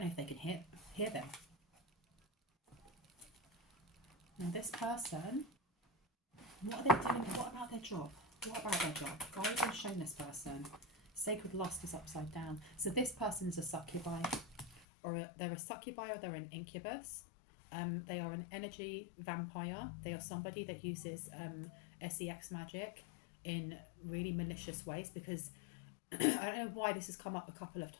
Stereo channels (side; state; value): right; drops out; at 14.9 s